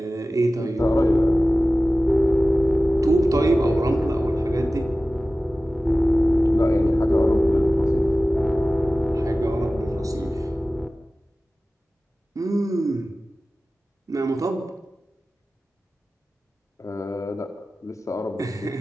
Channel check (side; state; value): both; normal; correlation 0.96